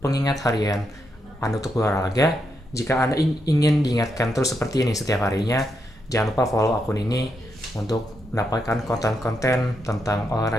harian Anda untuk berolahraga. Jika Anda ingin diingatkan terus seperti ini setiap harinya, jangan lupa follow akun ini untuk mendapatkan konten-konten tentang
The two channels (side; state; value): both; normal; correlation 0.82